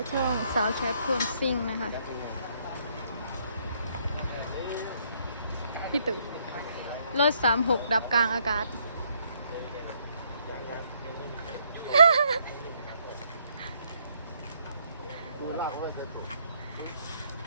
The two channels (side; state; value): both; inverted; correlation -0.70